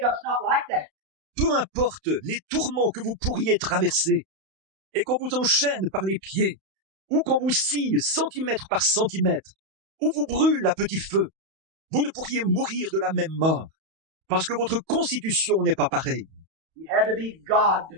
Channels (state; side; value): late; left; 31 ms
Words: not like that. Peu importe les tourments que vous pourriez traverser, et qu'on vous enchaîne par les pieds, ou qu'on vous scie centimètre par centimètre, ou vous brûle à petit feu, vous ne pourriez mourir de la même mort, parce que votre constitution n'est pas pareille. He had to be God.